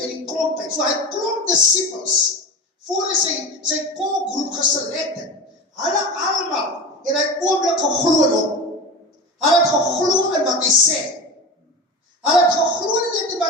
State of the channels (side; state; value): both; normal; correlation 0.29